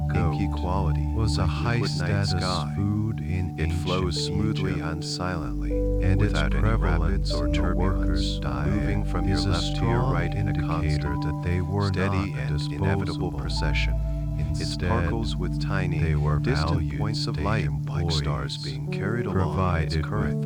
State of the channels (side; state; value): both; identical; correlation 1.00